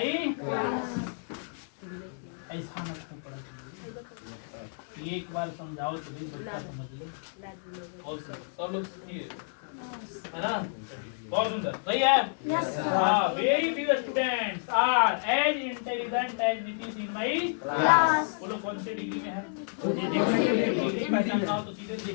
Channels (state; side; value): silent; right; digital silence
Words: ऐसा मत पढ़ा, एक बार समझाओ तो भी बच्चा समझ ले। और सब लोग सुनिए है ना। बहुत सुंदर, सही है? हाँ, very few students are as intelligent as Nitish in my class. बोलो कौन से डिग्री में है? डिग्री पहचानना हो तो सीधे